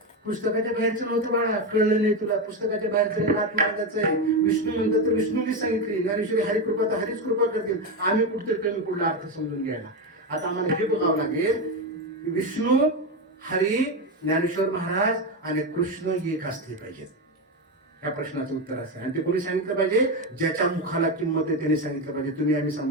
पुस्तकाच्या बाहेरचं नव्हतं बाळा. कळलं नाही तुला. पुस्तकाच्या बाहेरचं नाथ महाराजाचं आहे. विष्णू म्हणतात तर विष्णूने सांगितली. ज्ञानेश्वरी हरी कृपा तर हरीच कृपा करतील. आम्ही कुठतरी कमी कुठला अर्थ समजून घ्यायला. आता आम्हाला हे बघावं लागेल विष्णू हरी ज्ञानेश्वर महाराज आणि कृष्ण एक असले पाहिजेत. या प्रश्नाचं उत्तर असं. आणि ते कोणी सांगितलं पाहिजे ज्याच्या मुखाला किंमत आहे त्याने सांगितलं पाहिजे. तुम्ही आम्ही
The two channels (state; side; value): normal; both; correlation 0.13